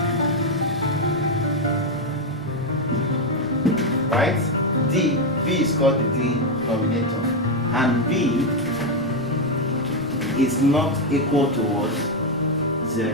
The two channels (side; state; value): both; normal; correlation 0.04